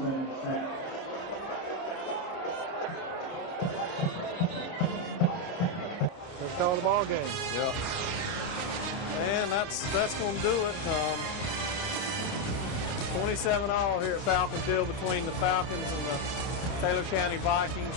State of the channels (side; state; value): right; late; 29 ms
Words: We'll call the ball game. Yep. And that's going to do it. 27-all here at Falcon Field between the Falcons and the Taylor County Vikings.